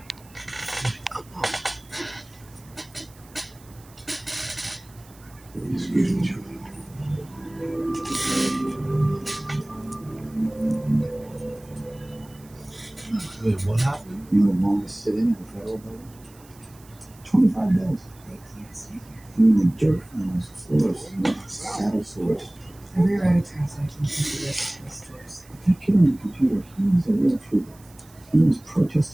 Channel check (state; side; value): noise; right; hiss, 25 dB below the sound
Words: Excuse me, gentlemen. Wait, what happened? You're the longest sitting in the federal building? 25 days. They can't stay here. Doing the dirt on those floors, those saddle sores. The rewrite of translate includes the rest of the stores. That kid on the computer, he's a real trooper. He was